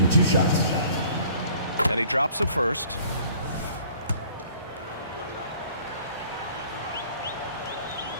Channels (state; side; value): inverted; both; correlation -0.54